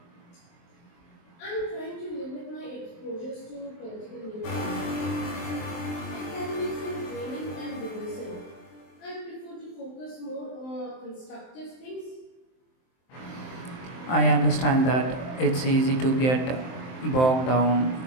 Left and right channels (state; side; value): late; right; 23 ms